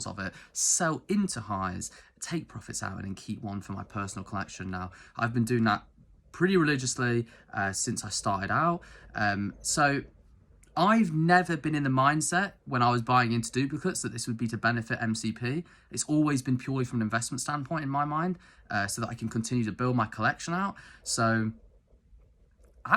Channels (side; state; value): both; identical; correlation 1.00